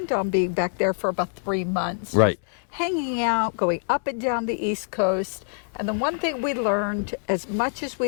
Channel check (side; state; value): right; silent; 62 dB below the other